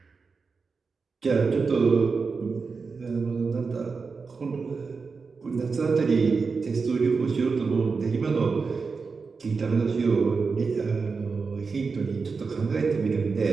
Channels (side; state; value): left; quieter; 4.8 dB